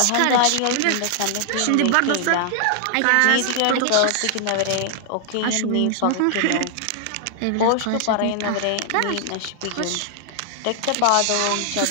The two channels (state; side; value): different; both; correlation 0.00